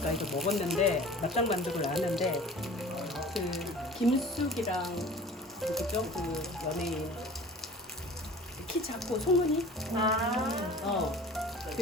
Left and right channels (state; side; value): normal; both; correlation 0.42